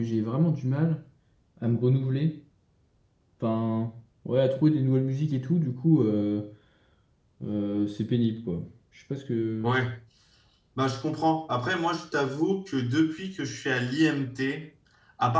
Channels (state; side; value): identical; both; correlation 1.00